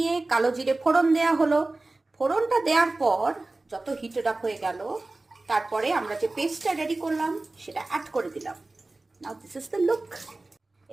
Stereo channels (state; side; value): quieter; left; 3.1 dB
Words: কালো জিরে ফোড়ন দেওয়া হলো। ফোড়নটা দেওয়ার পর যত হিটেড আপ হয়ে গেল, তারপরে আমরা যে পেস্টটা রেডি করলাম সেটা অ্যাড করে দিলাম। নাও দিস ইজ দ্য লুক।